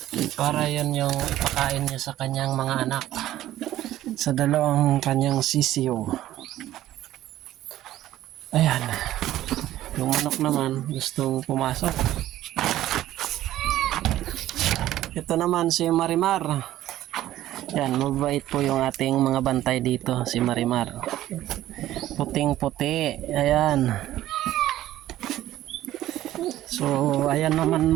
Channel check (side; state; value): left; quieter; 13.9 dB